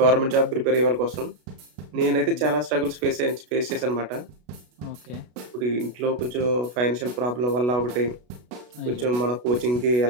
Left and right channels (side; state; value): left; late; 33 ms